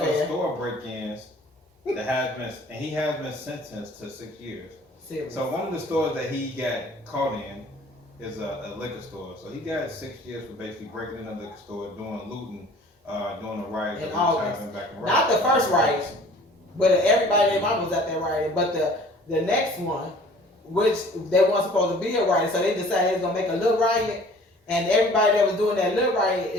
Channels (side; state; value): both; normal; correlation 0.50